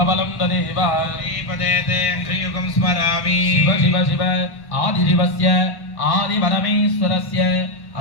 तदेव श्रीपदेते श्रीयुगं स्मरामि। शिव शिव शिव आदिशिवस्य आदिपरमेश्वरस्य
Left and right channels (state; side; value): late; right; 1.1 ms